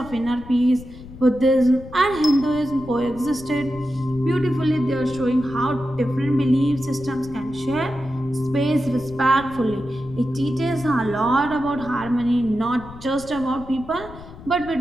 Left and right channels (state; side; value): noise; left; rumble, 16 dB below the sound